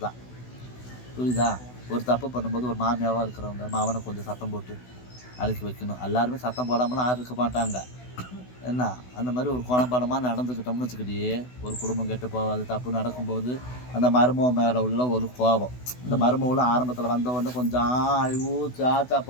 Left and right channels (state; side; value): late; right; 16 ms